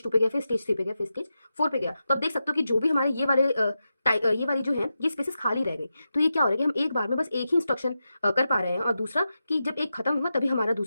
2 पे गया, फिर स्टेज 3 पे गया, फिर स्टेज 4 पे गया। तो अब देख सकते हो कि जो भी हमारे ये वाली जो है ये स्पेसेस खाली रह गई। तो ये क्या हो रहा है कि हम एक बार में बस एक ही इंस्ट्रक्शन कर पा रहे हैं, और दूसरा कि जब एक खत्म हुआ तभी हमारा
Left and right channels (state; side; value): inverted; both; correlation -0.90